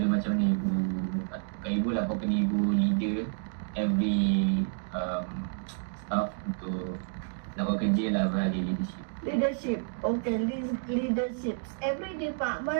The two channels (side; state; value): left; silent; digital silence